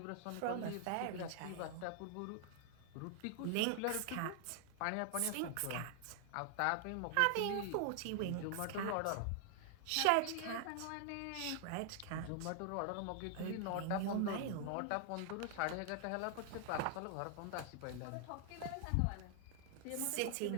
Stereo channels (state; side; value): different; both; correlation 0.00